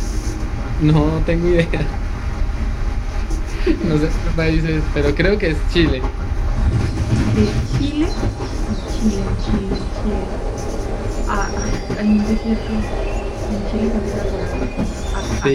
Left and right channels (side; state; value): both; identical; correlation 1.00